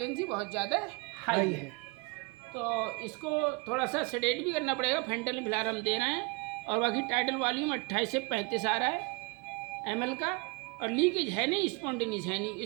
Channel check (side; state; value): left; quieter; 28.7 dB